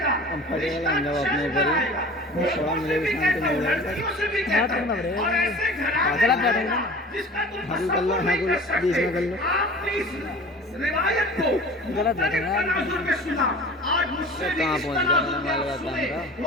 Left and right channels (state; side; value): normal; both; correlation 0.41